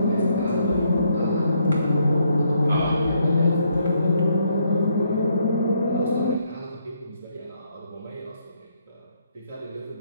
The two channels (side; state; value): both; inverted; correlation -0.73